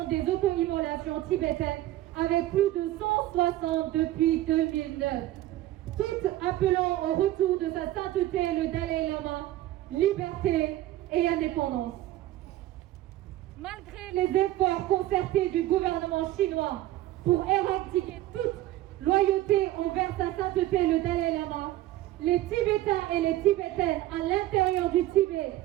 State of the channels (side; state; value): left; quieter; 15.1 dB